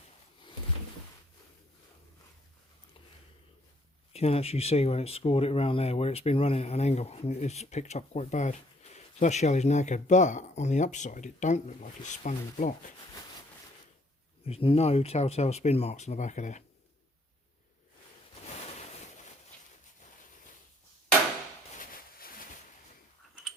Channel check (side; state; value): both; normal; correlation 0.65